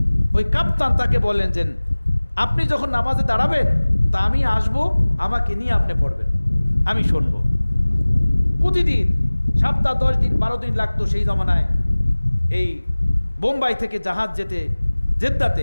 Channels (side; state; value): both; inverted; correlation -1.00